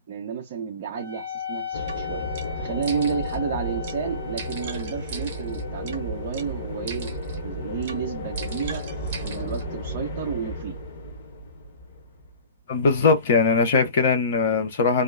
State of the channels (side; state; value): both; inverted; correlation -0.39